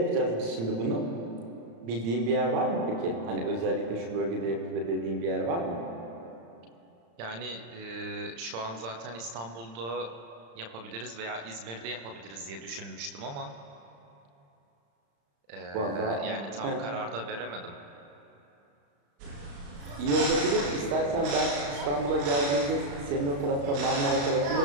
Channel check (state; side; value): late; left; 35 ms